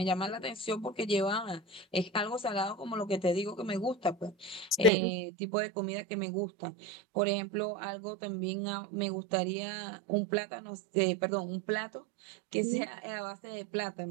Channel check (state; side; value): drops out; left; at 4.9 s